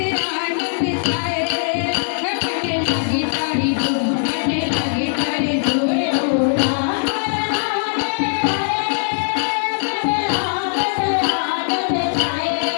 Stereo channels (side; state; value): right; silent; digital silence